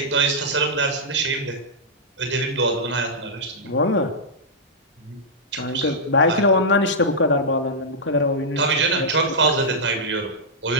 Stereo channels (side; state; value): both; normal; correlation -0.10